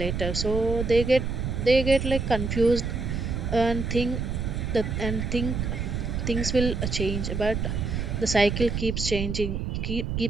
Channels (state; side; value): noise; right; rumble, 2 dB below the sound